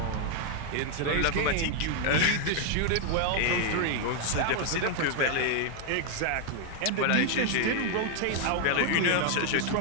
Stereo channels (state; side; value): different; both; correlation 0.00